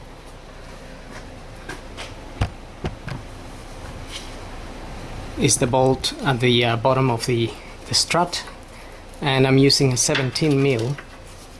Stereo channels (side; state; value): both; identical; correlation 1.00